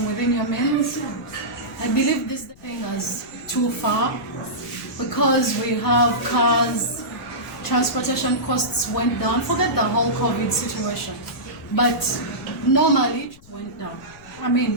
within your means. I believe this thing is too far because we have cars, transportation costs went down. Forget the whole COVID situation. But normally it went down. I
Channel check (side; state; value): left; noise; rumble, 24 dB below the sound